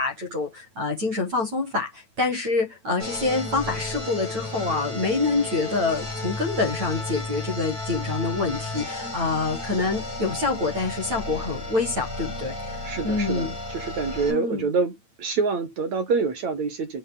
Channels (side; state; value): left; late; 9.0 ms